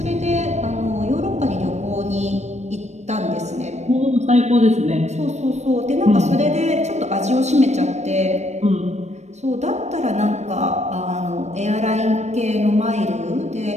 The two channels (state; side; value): late; left; 0.33 ms